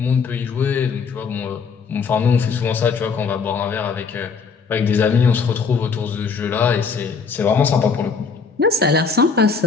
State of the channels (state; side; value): quieter; right; 5.3 dB